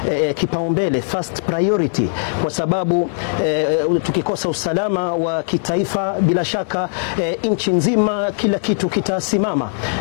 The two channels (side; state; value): right; silent; digital silence